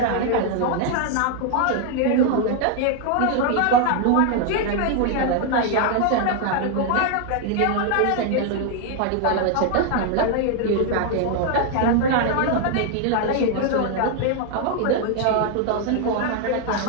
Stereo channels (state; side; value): different; both; correlation 0.00